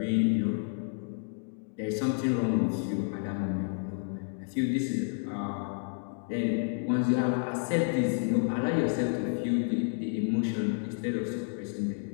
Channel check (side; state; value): right; silent; 58 dB below the other